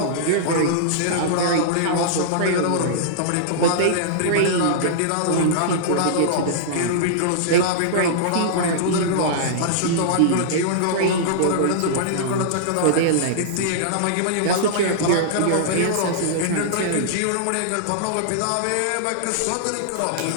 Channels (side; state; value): both; different; correlation -0.02